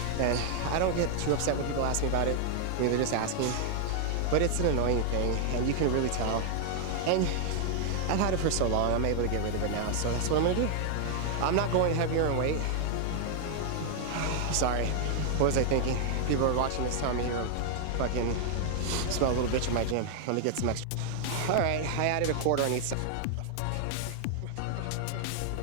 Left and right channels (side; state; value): both; different; correlation 0.00